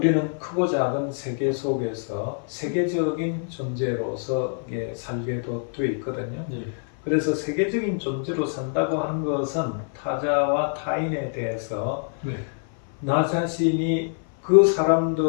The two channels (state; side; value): silent; right; 57 dB below the other